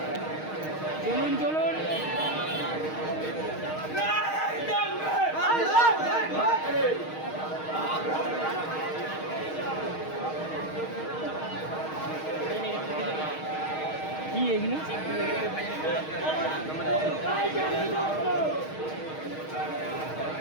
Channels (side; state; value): right; late; 6.4 ms